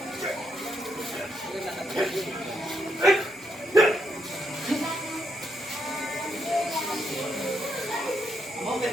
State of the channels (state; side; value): normal; both; correlation 0.78